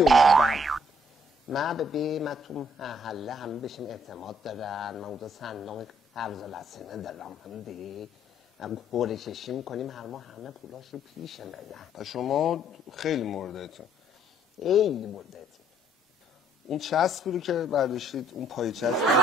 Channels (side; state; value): both; normal; correlation 0.65